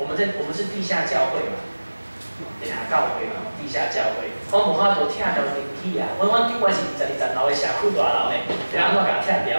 们是地下教会嘛。地下教会嘛，地下教会，阮无法度拆掉电梯啊！阮顶悬是22楼的社区大楼的，要安怎甲拆掉？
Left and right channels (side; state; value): both; inverted; correlation -1.00